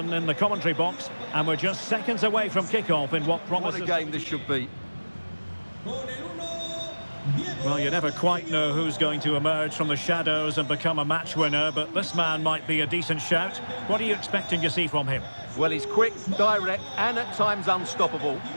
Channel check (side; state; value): both; inverted; correlation -1.00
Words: in the commentary box, and we're just seconds away from kickoff in what promises... What a game this should be. Well, you never quite know who's going to emerge from the shadows and become a match winner, but this man might be a decent shout. What are you expecting to see from him? Well, he's quick, direct, and at times unstoppable.